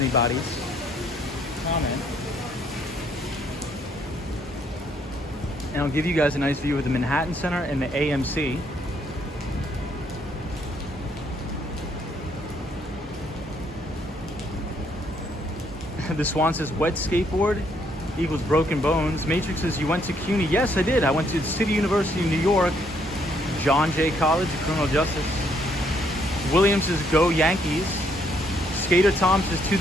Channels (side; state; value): both; normal; correlation 0.70